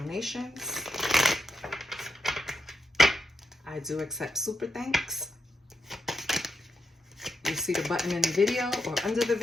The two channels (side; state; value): both; normal; correlation 0.83